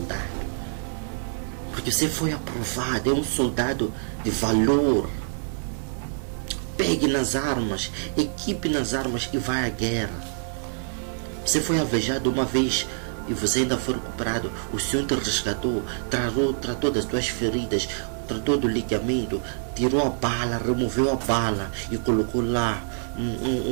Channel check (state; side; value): silent; left; digital silence